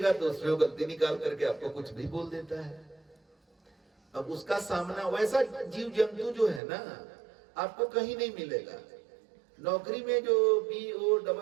तो उसमें गलती निकाल करके आपको कुछ भी बोल देता है। अब उसका सामना, वैसा जीव जंतु जो है ना आपको कहीं नहीं मिलेगा। नौकरी में जो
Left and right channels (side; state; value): left; drops out; at 6.6 s